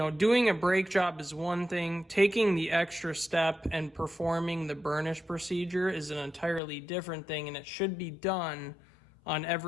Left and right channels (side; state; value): right; drops out; at 6.6 s